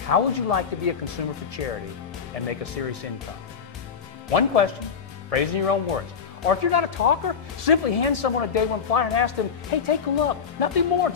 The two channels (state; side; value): quieter; right; 6.5 dB